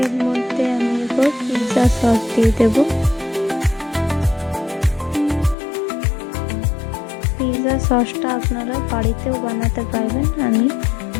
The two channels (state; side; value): drops out; right; at 5.6 s